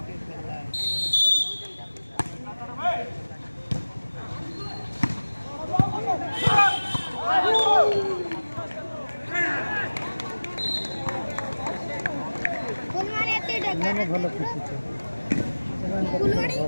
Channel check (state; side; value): inverted; both; correlation -1.00